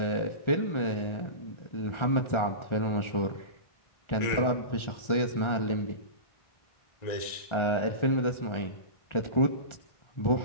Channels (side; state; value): right; late; 1.4 ms